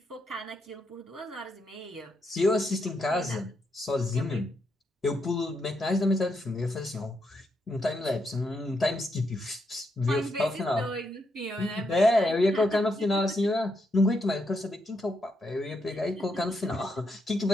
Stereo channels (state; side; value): normal; both; correlation 0.80